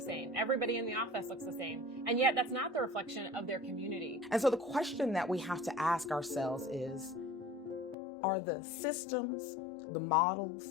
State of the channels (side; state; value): right; drops out; at 8.0 s